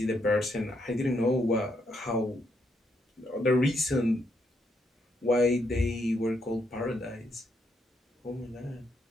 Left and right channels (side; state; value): both; normal; correlation 0.77